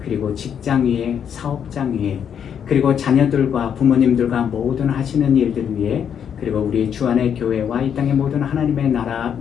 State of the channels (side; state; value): right; quieter; 8.2 dB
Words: 그리고 직장 위에, 사업장 위에, 그리고 자녀들과 부모님들과 모든 하시는 일들 위에, 그리고 우리 주안의 교회와 이 땅의 모든 하나님의 나라